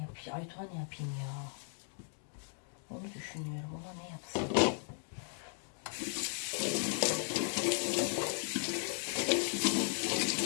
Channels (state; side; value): silent; right; 53 dB below the other